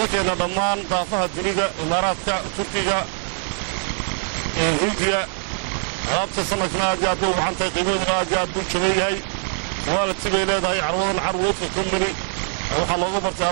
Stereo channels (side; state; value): left; silent; 64 dB below the other